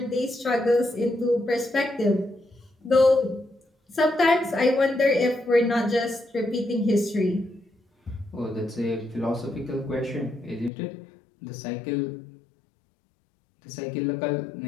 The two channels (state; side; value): drops out; right; at 10.7 s